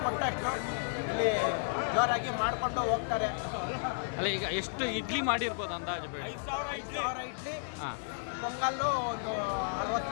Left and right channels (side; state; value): right; silent; digital silence